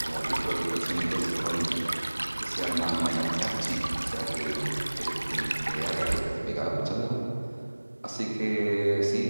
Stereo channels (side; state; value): both; inverted; correlation -1.00